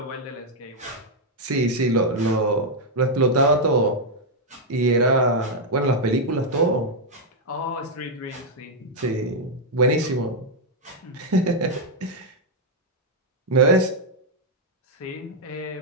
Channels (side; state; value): both; normal; correlation -0.02